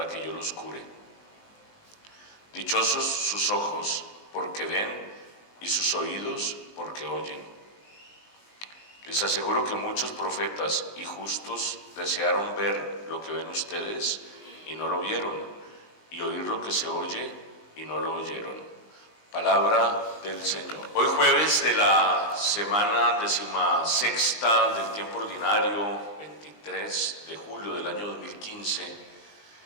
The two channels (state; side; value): late; right; 19 ms